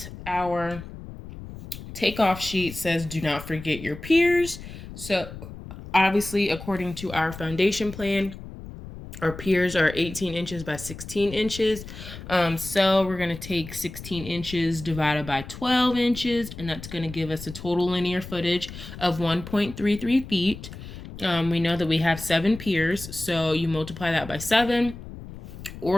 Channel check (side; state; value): left; noise; rumble, 13 dB below the sound